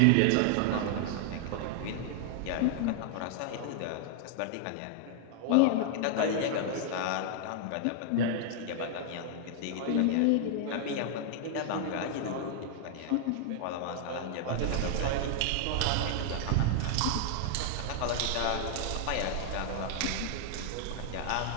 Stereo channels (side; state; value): both; different; correlation 0.00